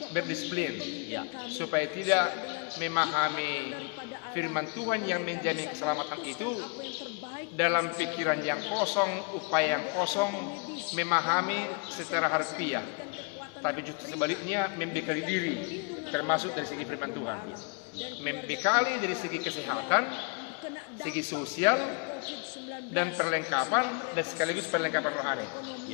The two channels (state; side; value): quieter; right; 34.3 dB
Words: berdisiplin, iya, supaya tidak memahami firman Tuhan yang menjamin keselamatan itu dalam pikiran yang kosong, upaya yang kosong, memahami secara harfiah, tapi justru sebaliknya membekali diri, termasuk dari segi firman Tuhan, membekali dari segi kesehatan, segi sosial, dan perlengkapan, dan sekaligus perlengkapan rohani.